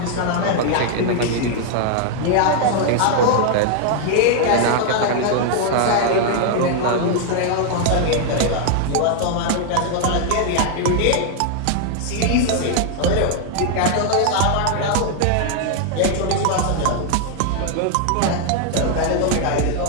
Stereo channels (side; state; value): both; different; correlation 0.00